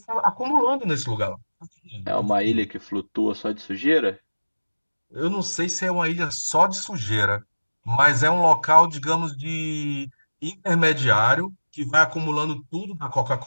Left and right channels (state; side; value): inverted; both; correlation -1.00